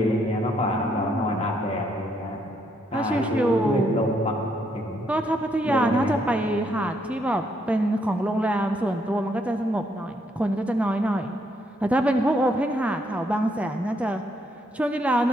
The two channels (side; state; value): both; normal; correlation 0.74